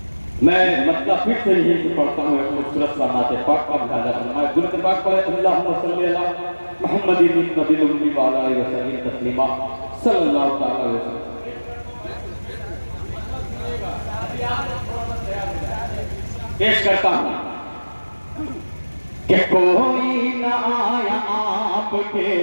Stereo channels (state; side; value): inverted; both; correlation -1.00